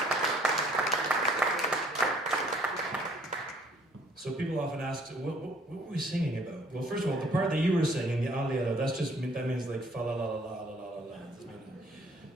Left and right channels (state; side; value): normal; both; correlation 0.60